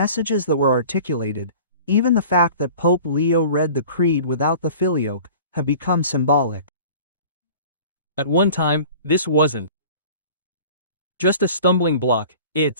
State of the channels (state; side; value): inverted; both; correlation -0.44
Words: that were articulated, even the fact that Pope Leo read the Creed without the Filioque, have become symbolic. At one time, this wasn't just a stumbling block,